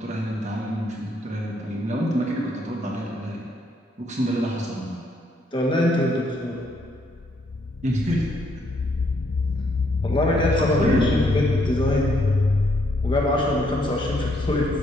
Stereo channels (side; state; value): both; normal; correlation 0.72